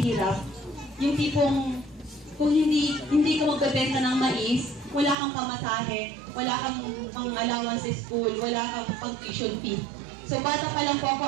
Yung tipong, kung hindi ka magbebenta ng mais, wala kang pamasahe, wala kang pang-allowance sa school, wala kang pang-tuition fee. So bata pa lang po ako,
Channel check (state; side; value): drops out; left; at 5.2 s